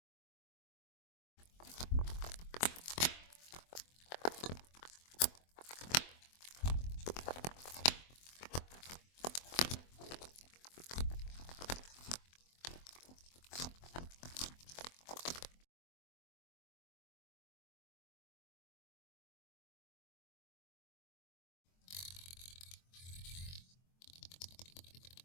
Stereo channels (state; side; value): late; right; 23 ms